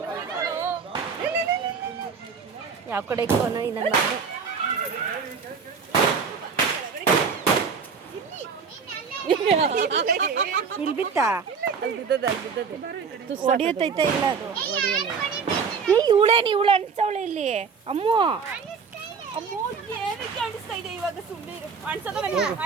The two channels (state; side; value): quieter; left; 5.8 dB